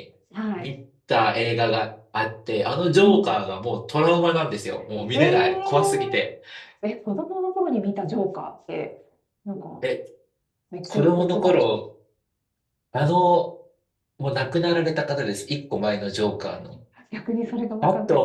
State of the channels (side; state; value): both; identical; correlation 1.00